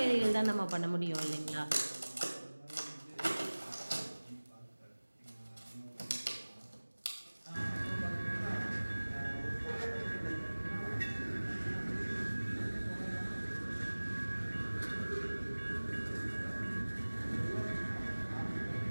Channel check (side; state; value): both; inverted; correlation -1.00